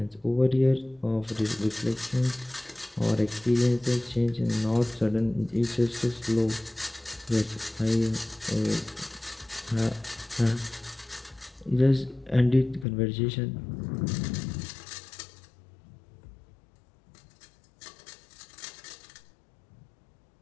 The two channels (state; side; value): drops out; right; at 12.9 s